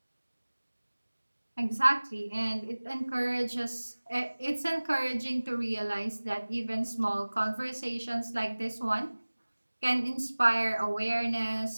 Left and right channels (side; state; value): both; inverted; correlation -1.00